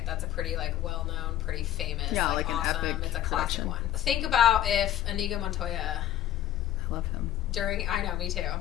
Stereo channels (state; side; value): quieter; right; 12.1 dB